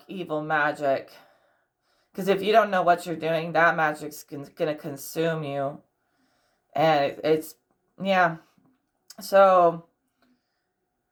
evil magic. Because if you don't know what you're doing, that magic's gonna consume you. And yeah. So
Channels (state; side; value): identical; both; correlation 1.00